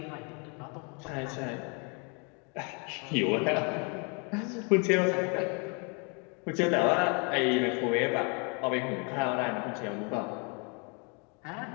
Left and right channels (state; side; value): quieter; right; 34.3 dB